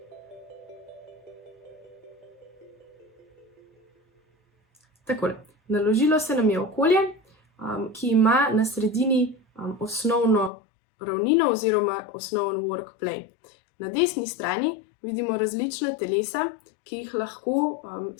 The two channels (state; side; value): drops out; right; at 10.5 s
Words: Takole, naložilo se nam je okolje, ki ima na sredini osnovno ravnino oziroma osnoven work plane. Na desni strani vidimo različna telesa, ki jih lahko